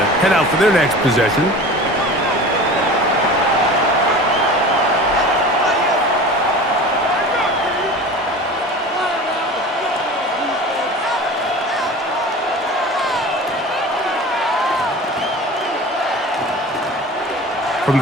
head out for their next possession. From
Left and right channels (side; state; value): both; normal; correlation 0.37